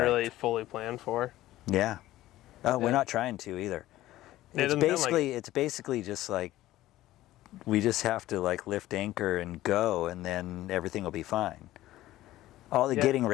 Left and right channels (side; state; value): right; quieter; 15.4 dB